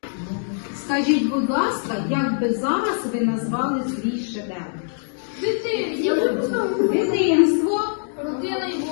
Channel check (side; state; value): right; silent; digital silence